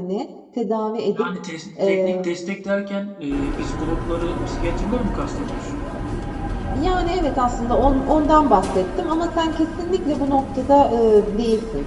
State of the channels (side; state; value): both; identical; correlation 1.00